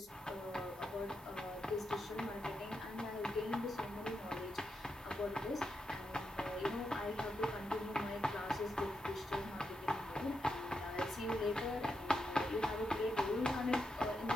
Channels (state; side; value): normal; both; correlation 0.84